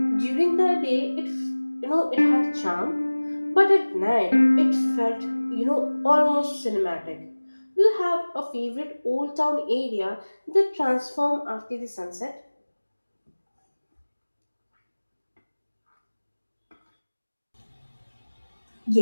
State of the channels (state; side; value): inverted; both; correlation -1.00